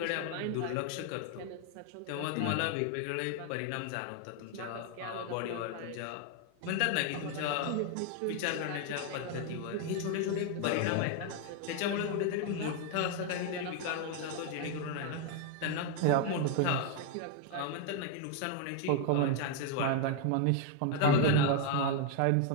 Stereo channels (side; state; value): both; different; correlation 0.01